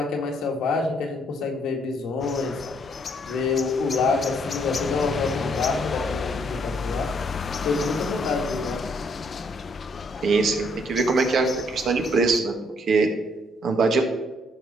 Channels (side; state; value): both; normal; correlation 0.69